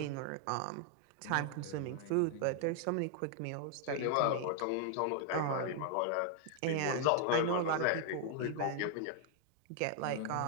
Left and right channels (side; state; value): both; different; correlation 0.00